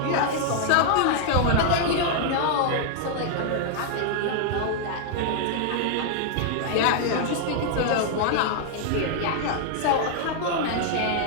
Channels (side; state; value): both; different; correlation 0.00